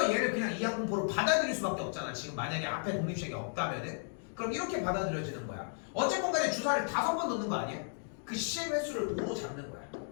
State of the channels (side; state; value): right; silent; digital silence